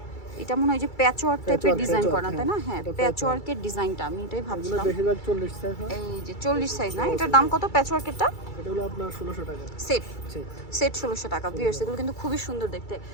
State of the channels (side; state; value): right; late; 2.3 ms